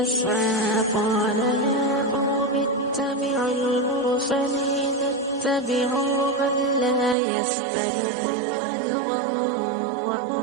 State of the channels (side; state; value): left; drops out; at 7.2 s